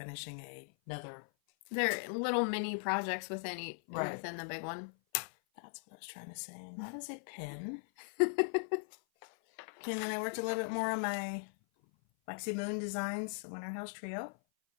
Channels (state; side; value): silent; right; 52 dB below the other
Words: another. They're little mini projects within Right. within the big one. That's what I was trying to say. And that is a pin. Okay, and then I worked a little bit more on my Lexi Moon Designs Winter House Trio.